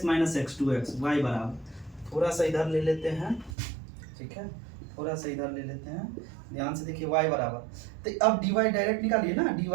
2x y बराबर, थोड़ा सा इधर ले लेते हैं, ठीक है, थोड़ा सा इधर ले लेते हैं, ध्यान से देखिए y बराबर, तो अब dy डायरेक्ट निकालिए ना, dy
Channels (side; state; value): left; drops out; at 3.6 s